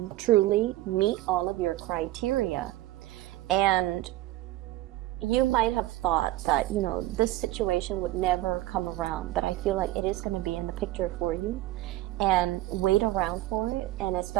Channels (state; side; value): quieter; left; 16.1 dB